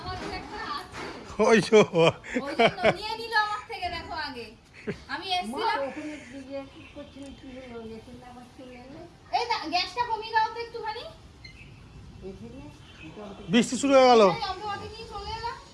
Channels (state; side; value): identical; both; correlation 1.00